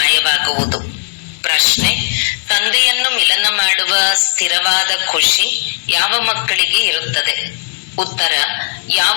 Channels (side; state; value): right; silent; digital silence